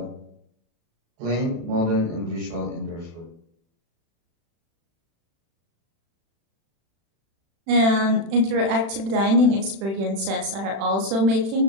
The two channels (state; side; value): late; left; 36 ms